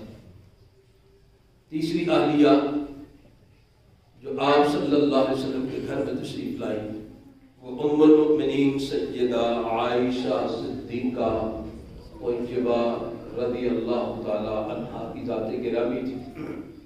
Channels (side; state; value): both; identical; correlation 1.00